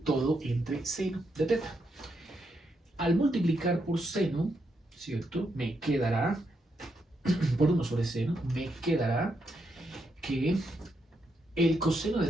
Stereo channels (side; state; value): both; normal; correlation 0.80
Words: todo entre seno de teta. Al multiplicar por seno, ¿cierto? Me quedará, por 1 sobre seno, me quedará que el coseno